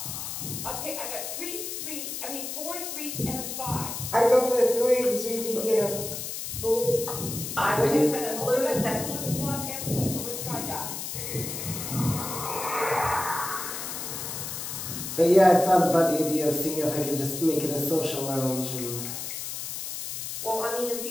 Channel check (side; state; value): left; noise; hiss, 6 dB below the sound